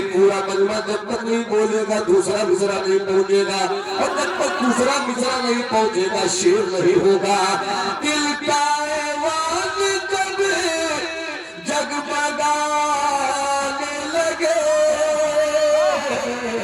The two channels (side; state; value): both; identical; correlation 1.00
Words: पूरा मजमा जब तक नहीं बोलेगा दूसरा मिसरा नहीं पहुंचेगा, और जब तक दूसरा मिसरा नहीं पहुंचेगा शेर नहीं होगा। दिल का ऐवान जब जगमगाने लगे,